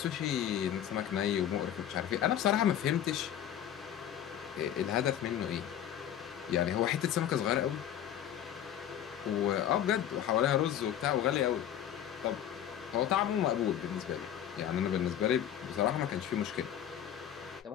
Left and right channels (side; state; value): right; quieter; 10.4 dB